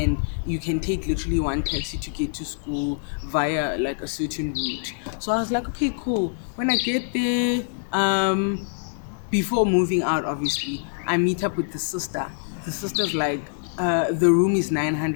you can take literally one taxi to get to school via like a certain route." So I was like, "Okay, cool." When I get there, before moving out, obviously, I meet up with the sister. The sister's like, the room is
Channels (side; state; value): right; silent; 62 dB below the other